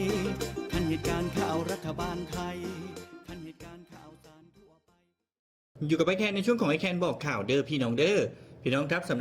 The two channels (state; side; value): identical; both; correlation 1.00